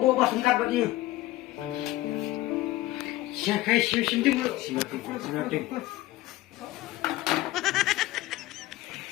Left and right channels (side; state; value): right; quieter; 17.0 dB